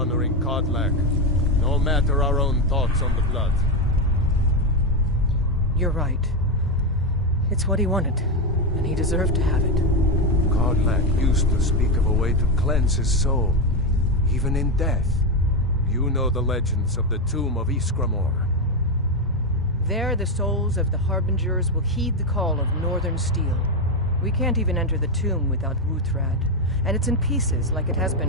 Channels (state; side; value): normal; both; correlation 0.09